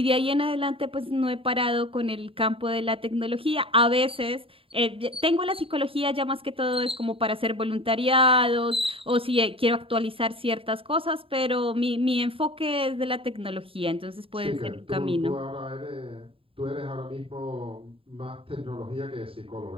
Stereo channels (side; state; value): left; late; 0.27 ms